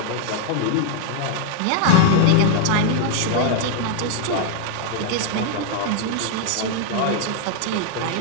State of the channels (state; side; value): different; both; correlation 0.00